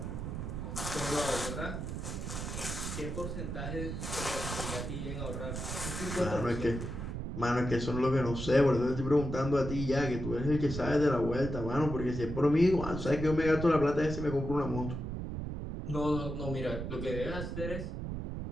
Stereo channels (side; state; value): right; noise; rumble, 5 dB below the sound